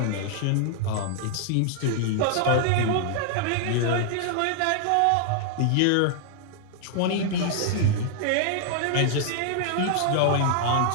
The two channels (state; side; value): different; both; correlation 0.00